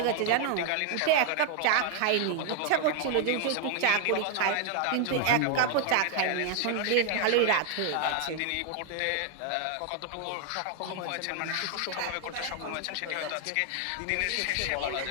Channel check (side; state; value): both; different; correlation 0.00